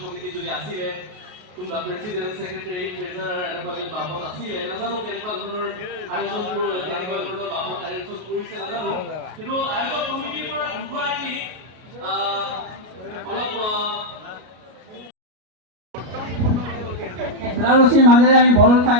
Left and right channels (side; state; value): left; late; 33 ms